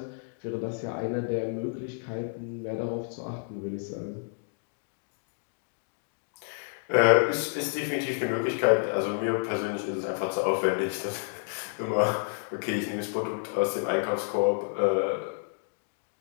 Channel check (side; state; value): right; silent; digital silence